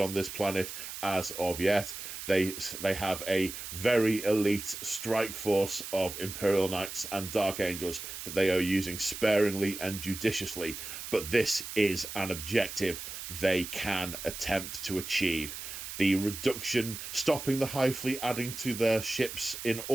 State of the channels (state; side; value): noise; right; hiss, 9 dB below the sound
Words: this planet as of yet. They have a very elite strike force of Imperial Knights and Dark Angels that they are using sparingly and judiciously, but this is an objective they can attempt to achieve. The reduction, stopping the High Fleet adding to their ships in